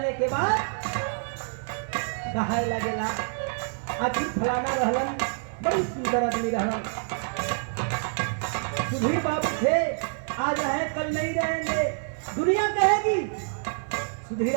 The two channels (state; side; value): silent; left; 55 dB below the other